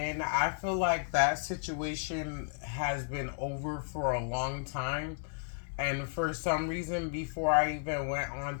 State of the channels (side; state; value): right; silent; digital silence